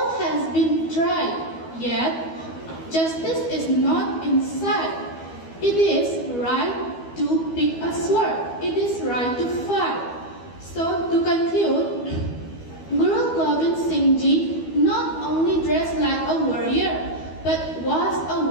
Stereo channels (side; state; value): right; late; 12 ms